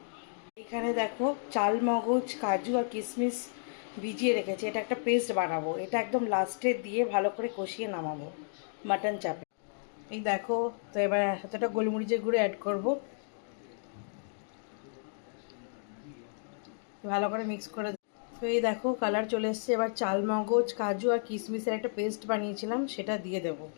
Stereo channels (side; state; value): right; silent; digital silence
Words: এখানে দেখো চাল, মগজ, কাজু আর কিশমিশ ভিজিয়ে রেখেছি, এটা একটা পেস্ট বানাবো। এটা একদম লাস্টে দিয়ে ভালো করে কষিয়ে নামাবো মাটন চাপে। এই দেখো, তো এবার এতটা গোলমরিচের গুঁড়ো অ্যাড করব, ভালো করে মিক্স করে। তো এই দেখো কালার চলে এসছে। এবার চাল, মগজ, কাজু আর কিশমিশের একটা পেস্ট বানিয়েছিলাম, সেটা দিয়ে দেব।